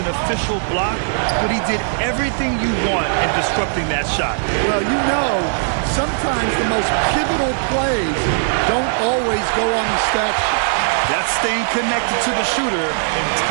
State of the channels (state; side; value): silent; left; digital silence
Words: official block, but he did everything you want in disrupting that shot. Well, you know, sometimes the most pivotal plays don't always go on the stat sheet. That's staying connected to the shooter and